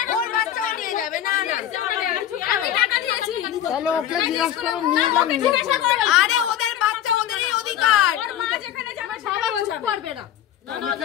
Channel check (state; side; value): quieter; right; 10.9 dB